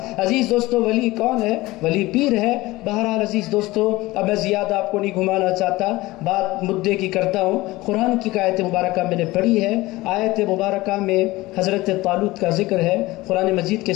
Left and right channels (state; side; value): quieter; right; 19.5 dB